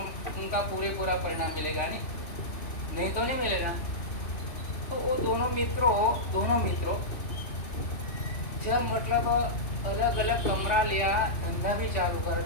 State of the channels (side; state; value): right; late; 3.4 ms